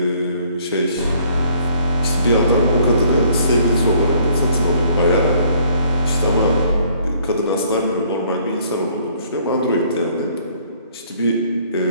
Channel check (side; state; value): both; inverted; correlation -0.61